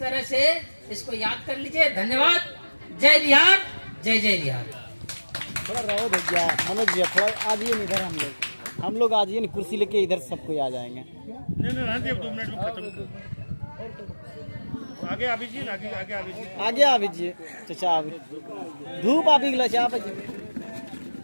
से इसको याद कर लीजिए। धन्यवाद। जय बिहार, जय जय बिहार। थोड़ा रहो भैया, मनोज भैया थोड़ा आ जाइए इधर, हम लोग आ जाइए ना, कुर्सी लेके इधर सबको आ जाएंगे। नहीं रहने अब 2 मिनट में खत्म। आगे आ दीजिए, आगे आगे आ दीजिए, आगे आ दीजिए चाचा, धूप आ गई चाचा।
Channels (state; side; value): inverted; both; correlation -1.00